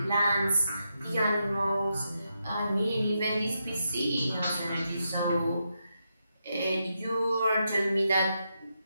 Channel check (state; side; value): inverted; both; correlation -0.84